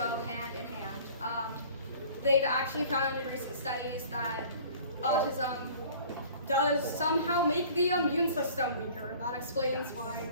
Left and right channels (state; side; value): inverted; both; correlation -0.48